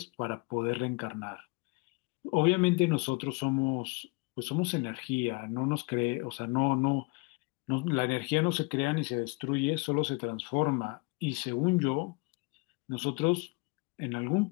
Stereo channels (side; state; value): right; quieter; 27.6 dB